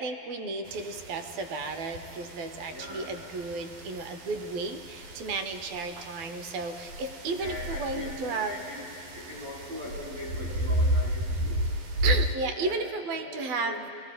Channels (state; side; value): late; left; 12 ms